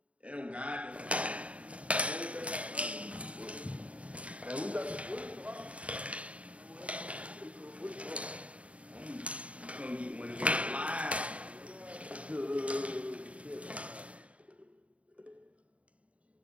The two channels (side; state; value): left; late; 0.065 ms